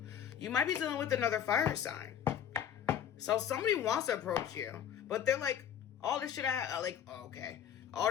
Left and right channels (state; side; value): quieter; right; 9.2 dB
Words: You might be dealing with another fire sign. So somebody wants to approach you, but they're like, all this shit okay. All